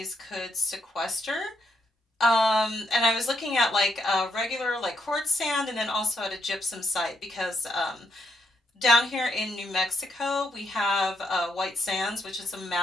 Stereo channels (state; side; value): normal; both; correlation 0.77